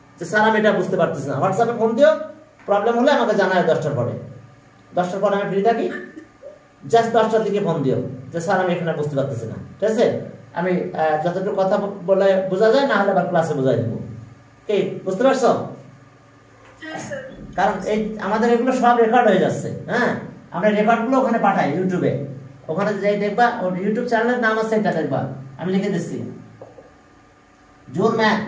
যে স্যার আমি এটা বুঝতে পারতেছি না, হোয়াটসঅ্যাপে ফোন দিও, প্রবলেম হলে আমাকে জানাও 10টার পরে। 10টার পরে আমি ফ্রি থাকি, জাস্ট 10টার দিকে ফোন দিও যে স্যার আমি এখানে বুঝতে পারতেছি না, ঠিক আছে? আমি যতটুকু কথা বলে বোঝা যায়, না হলে আবার ক্লাসে বোঝাই দেবো। কি বুঝতে পারছো? কারণ এই আমাদের এগুলো সব রেকর্ড হয়ে যাচ্ছে, হ্যাঁ, আমরা রেকর্ডগুলো ওখানে পাঠাই ইউটিউবে, ওখানে যাই দেখবা, ওর ইউটিউব চ্যানেলের নাম আছে, এটা দেখবা, আমি লিখে দিচ্ছি, জোর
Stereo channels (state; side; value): identical; both; correlation 1.00